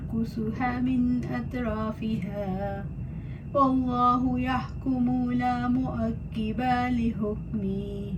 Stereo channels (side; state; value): both; identical; correlation 1.00